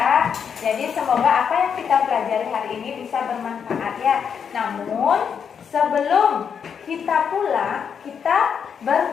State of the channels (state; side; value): quieter; right; 7.2 dB